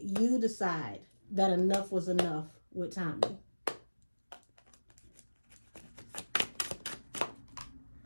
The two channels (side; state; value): both; inverted; correlation -1.00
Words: you decide that enough was enough with Tommy.